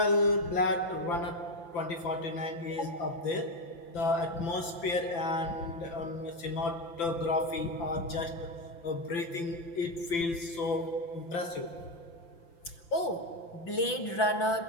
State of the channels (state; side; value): late; right; 5.9 ms